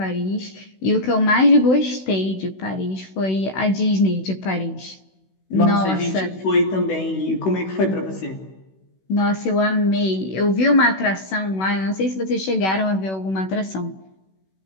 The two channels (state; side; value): late; right; 16 ms